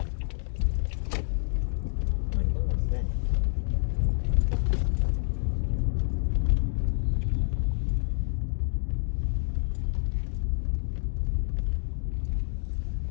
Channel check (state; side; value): silent; right; digital silence